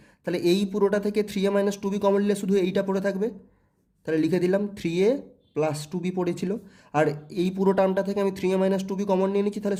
তাহলে এই পুরোটা থেকে 3a - 2b কমন নিলে শুধু এইটা পড়ে থাকবে, তাহলে লিখে দিলাম 3a + 2b পড়েছিল। আর এই পুরো টার্মটা থেকে আমি 3a - 2b কমন নিয়ে নিচ্ছি, তাহলে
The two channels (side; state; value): both; identical; correlation 1.00